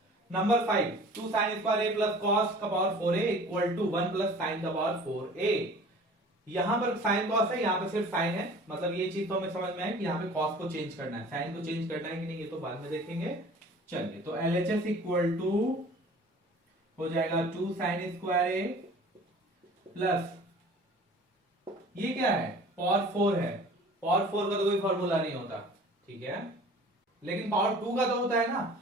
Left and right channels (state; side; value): normal; both; correlation 0.46